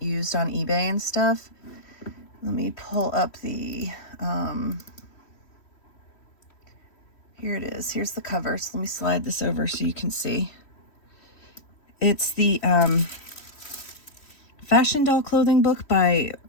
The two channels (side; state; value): right; late; 3.1 ms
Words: used on eBay and stuff. Let me pull up the, here it is. Here's the cover. So let me slide this over so you can see. It's the Fashion Doll Clothing book by